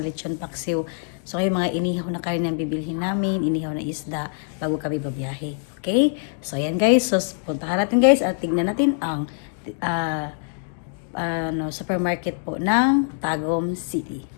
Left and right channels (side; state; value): right; silent; 60 dB below the other